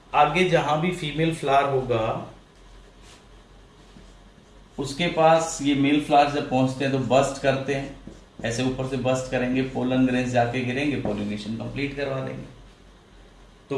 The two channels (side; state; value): both; identical; correlation 1.00